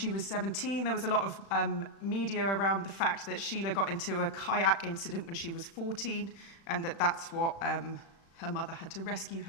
was 17. There was a lot of media around the fact that Sheila got into a kayak incident when she was 14, and that's what her mother had to rescue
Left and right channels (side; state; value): right; late; 36 ms